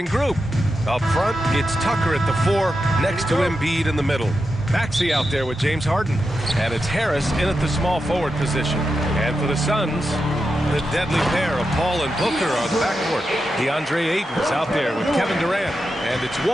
group. Up front, it's Tucker at the 4, next to Embiid in the middle. Maxey out there with James Harden. And it's Harris in at the small forward position. And for the Suns, the deadly pair of Paul and Booker on the backcourt. DeAndre Ayton is out there with Kevin Durant. And it's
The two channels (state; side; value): normal; both; correlation 0.88